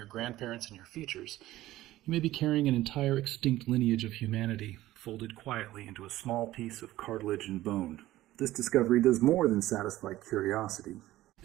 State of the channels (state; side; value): quieter; left; 15.7 dB